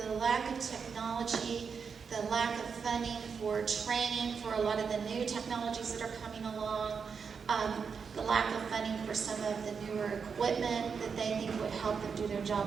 the lack of technology, the lack of funding for training for a lot of the new technologies that are coming along, the lack of funding for some of the newer equipment that they think would help them do their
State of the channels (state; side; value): quieter; left; 5.9 dB